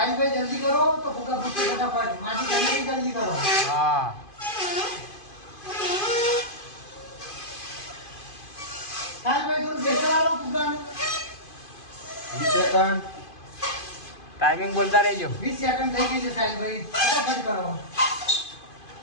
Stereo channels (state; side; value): late; right; 2.5 ms